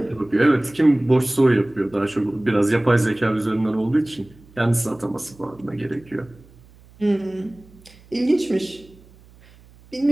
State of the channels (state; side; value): noise; right; hum, 26 dB below the sound